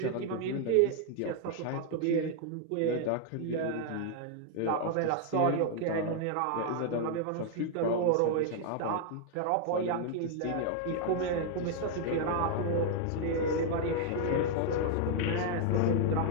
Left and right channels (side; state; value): both; different; correlation 0.00